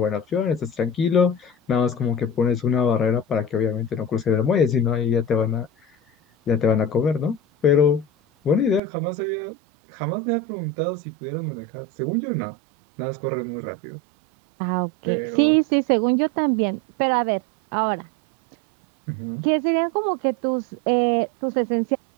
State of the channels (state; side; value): drops out; left; at 8.8 s